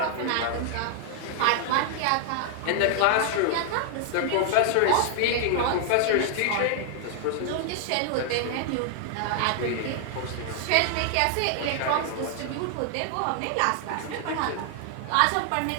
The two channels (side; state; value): both; different; correlation 0.00